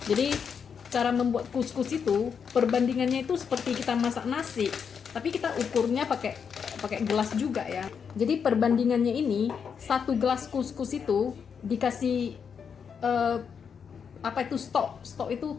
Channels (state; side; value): quieter; right; 6.7 dB